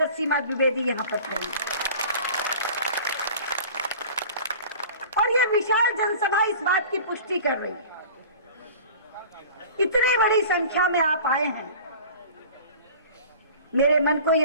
सीमा द्विवेदी यहां पर खड़ी और ये विशाल जनसभा इस बात की पुष्टि कर रही है। इतनी बड़ी संख्या में आप आए हैं, मेरे मन को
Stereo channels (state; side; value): inverted; both; correlation -0.41